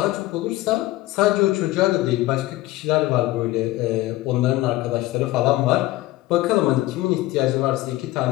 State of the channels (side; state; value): right; quieter; 17.4 dB